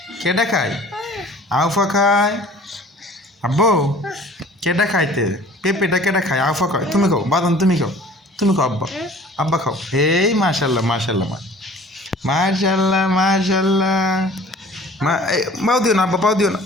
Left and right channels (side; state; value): both; normal; correlation 0.48